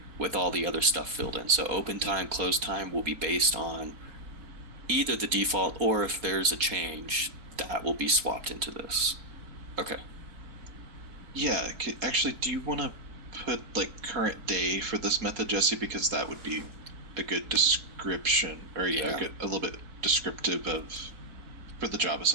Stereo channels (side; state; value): left; late; 4.3 ms